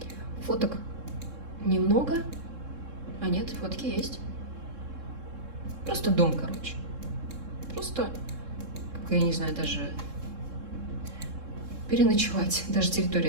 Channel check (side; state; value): left; late; 3.7 ms